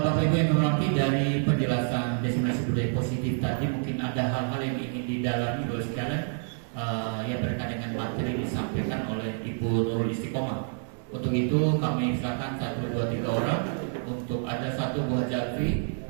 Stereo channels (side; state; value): left; silent; 59 dB below the other